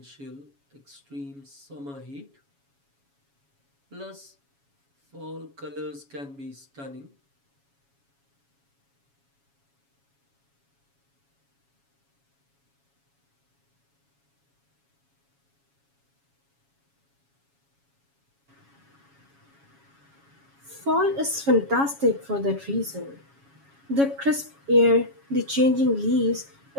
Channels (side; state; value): left; late; 7.2 ms